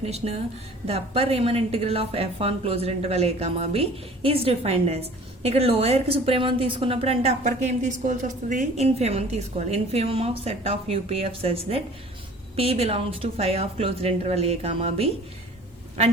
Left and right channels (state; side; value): normal; both; correlation 0.47